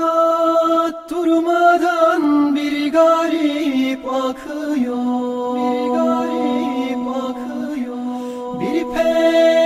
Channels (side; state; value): both; identical; correlation 1.00